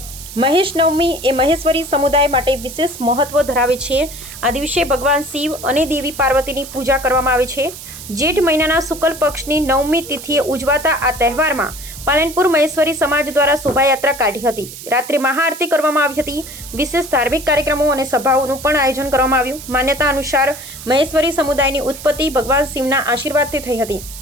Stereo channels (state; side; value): noise; right; hiss, 13 dB below the sound